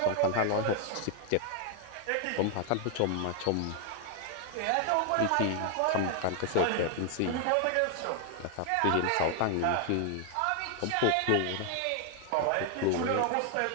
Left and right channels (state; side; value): different; both; correlation 0.00